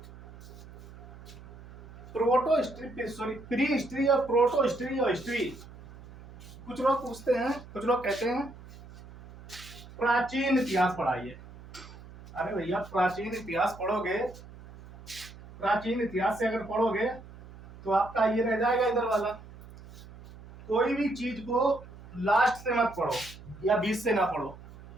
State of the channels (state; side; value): noise; right; hum, 18 dB below the sound